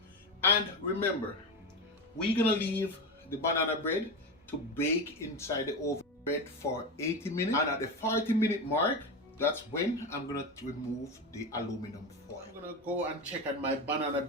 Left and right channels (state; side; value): normal; both; correlation 0.19